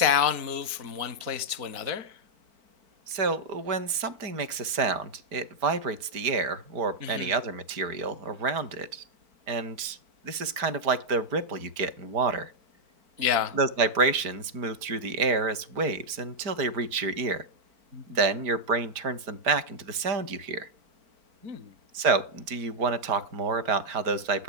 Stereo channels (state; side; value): late; left; 4.5 ms